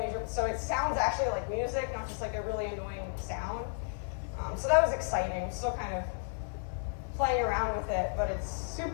so it sounds actually like music, not just like a really annoying sound. So that was exciting. Still kind of playing around with it, but it's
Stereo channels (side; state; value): right; silent; digital silence